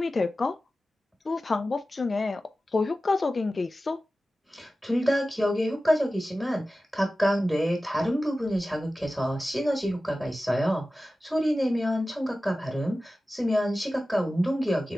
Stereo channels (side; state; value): both; normal; correlation 0.95